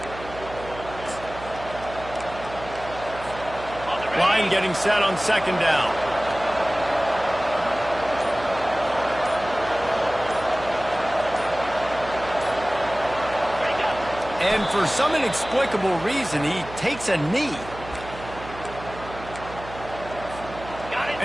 Line getting set on 2nd down. And for some inexplicable reason, he takes a knee.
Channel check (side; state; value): right; noise; hum, 14 dB below the sound